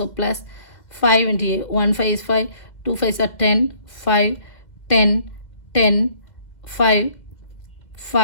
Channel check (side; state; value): right; late; 2.0 ms